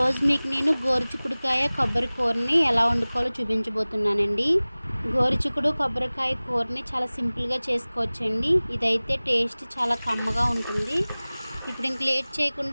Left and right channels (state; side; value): inverted; both; correlation -0.99